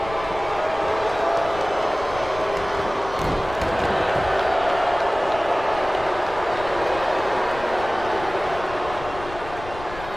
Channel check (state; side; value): noise; left; rumble, 14 dB below the sound